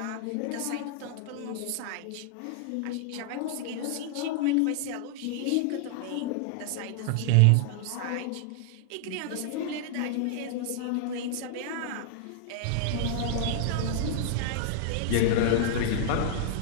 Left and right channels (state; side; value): different; both; correlation -0.01